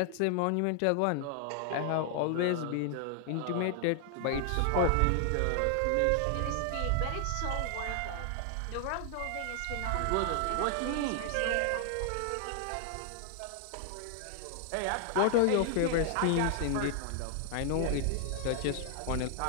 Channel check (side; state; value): both; different; correlation 0.00